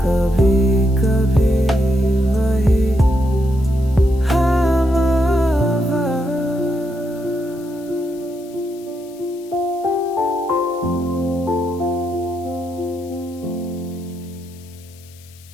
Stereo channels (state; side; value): noise; left; hiss, 25 dB below the sound